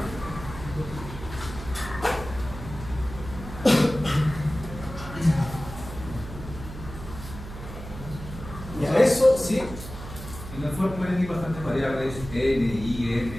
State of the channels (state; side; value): noise; right; hum, 11 dB below the sound